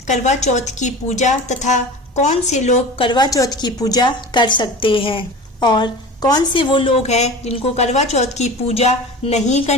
करवा चौथ की पूजा तथा कौन से लोग करवा चौथ की पूजा कर सकते हैं और कौन से वो लोग हैं जिनको करवा चौथ की पूजा नहीं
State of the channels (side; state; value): both; normal; correlation 0.34